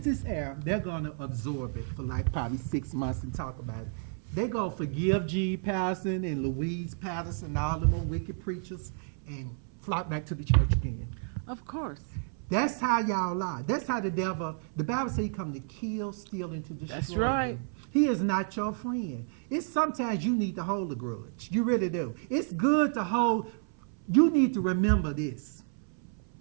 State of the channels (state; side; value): silent; left; 57 dB below the other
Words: this air, they're going to absorb it for like probably 6 months and talk about it. They're going to forgive G. Patterson and Louise Patterson and all them wicked preachers and flock back to the church again. Of course. That's how y'all lie. That's how the devil, the Bible says he come to kill, steal, and to destroy right. you. He is not your friend. It's sometimes you need to hold a grudge. You really do. It's good to hold. You need to remember this